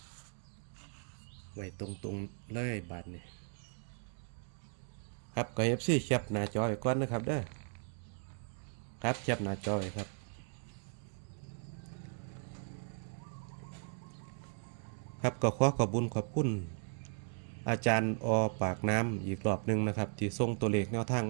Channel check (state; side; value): silent; left; 53 dB below the other